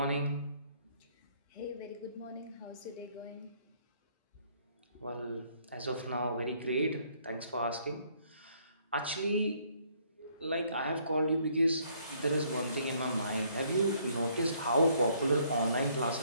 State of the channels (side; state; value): both; inverted; correlation -0.66